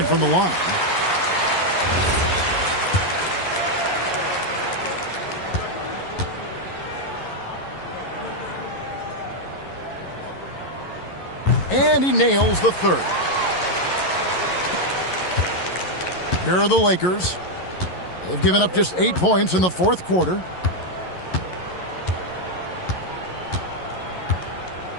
from the line. And he nails the third. Here are the Lakers. They've given up just 8 points in the fourth quarter.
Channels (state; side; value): late; right; 11 ms